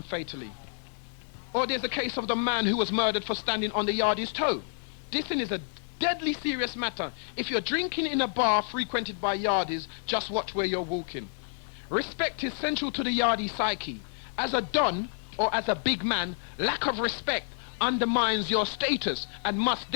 fatally. Or there's the case of the man who was murdered for standing on the yardie's toe. This thing is a deadly serious matter. If you're drinking in a bar frequented by yardies, just watch where you're walking. Respect is central to the yardie psyche. As a don, or as a big man, lack of respect undermines your status and must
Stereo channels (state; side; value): silent; right; digital silence